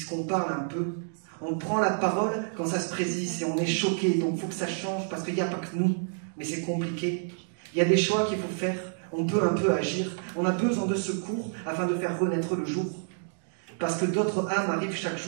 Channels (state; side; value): silent; left; digital silence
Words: parle un peu. On prend la parole quand ça se présise et on est choqué. Donc il faut que ça change, parce qu'il n'y a pas que nous. Mais c'est compliqué. Il y a des choix qu'il faut faire. On peut un peu agir. On a besoin de secours afin de faire renaître le jour. Parce que d'autres âmes arrivent chaque